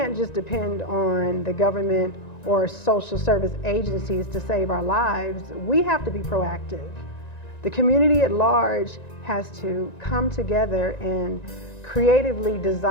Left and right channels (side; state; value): right; late; 1.9 ms